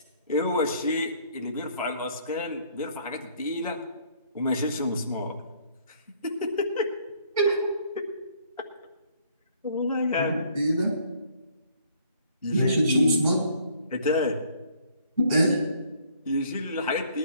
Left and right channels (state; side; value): inverted; both; correlation -0.62